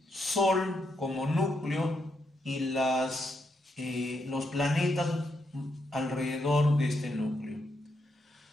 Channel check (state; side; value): normal; both; correlation 0.80